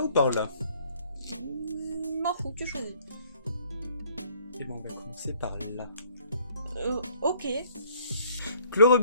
ou par là? M'en fous, tu choisis. Et ben on va commencer par là. Ok.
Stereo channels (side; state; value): both; inverted; correlation -0.59